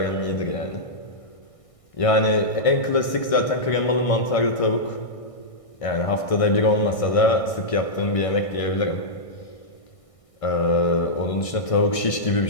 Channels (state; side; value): late; right; 1.6 ms